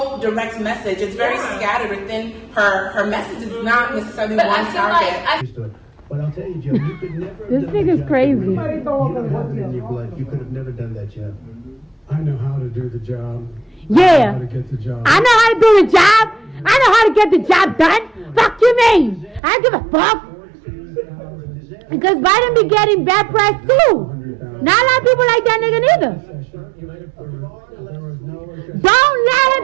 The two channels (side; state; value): left; drops out; at 19.4 s